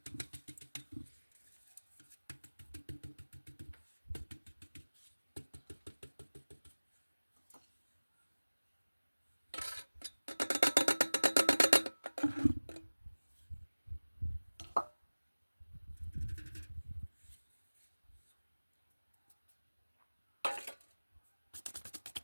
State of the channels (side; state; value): both; inverted; correlation -1.00